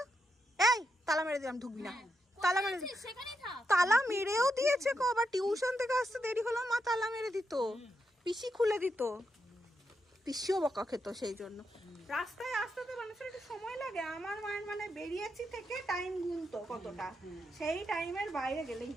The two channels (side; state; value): both; normal; correlation 0.83